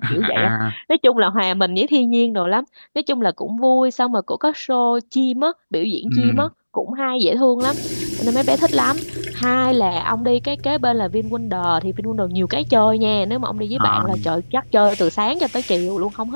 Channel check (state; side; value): inverted; both; correlation -1.00